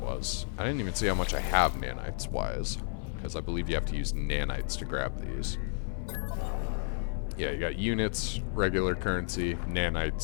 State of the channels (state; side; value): silent; right; 57 dB below the other